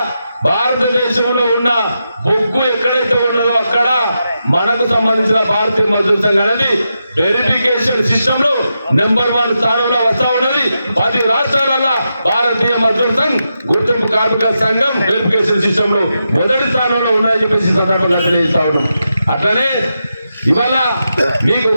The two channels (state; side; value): inverted; both; correlation -0.87